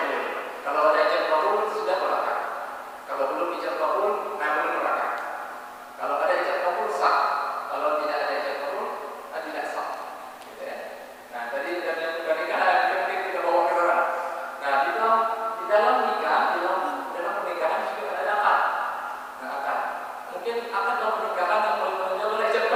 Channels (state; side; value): identical; both; correlation 1.00